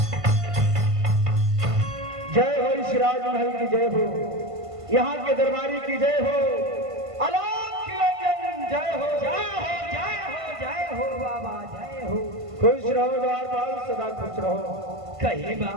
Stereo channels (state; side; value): late; left; 1.5 ms